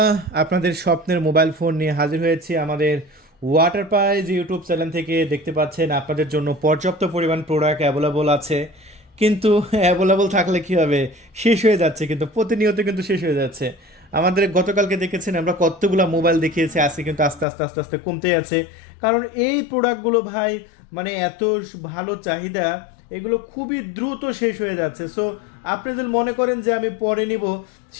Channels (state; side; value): drops out; right; at 17.4 s